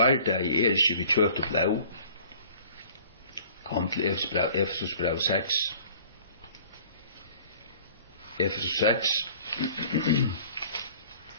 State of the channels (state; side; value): inverted; both; correlation -0.49